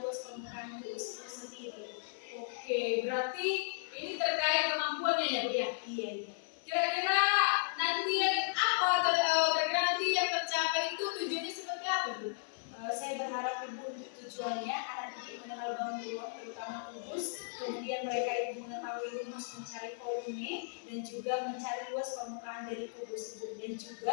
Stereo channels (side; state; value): right; silent; 54 dB below the other